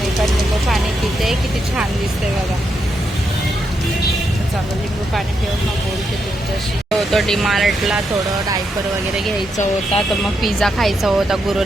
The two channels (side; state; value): both; normal; correlation 0.81